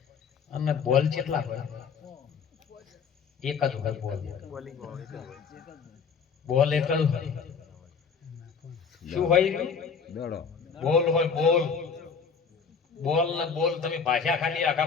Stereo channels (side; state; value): right; quieter; 6.0 dB